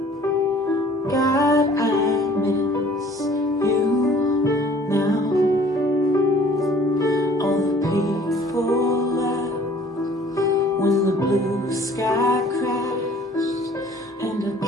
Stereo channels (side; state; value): both; normal; correlation 0.53